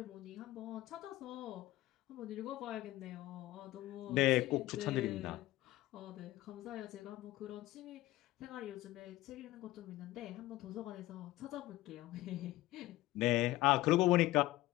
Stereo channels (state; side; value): quieter; right; 17.2 dB